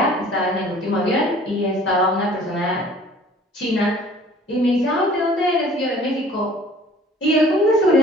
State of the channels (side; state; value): both; normal; correlation 0.51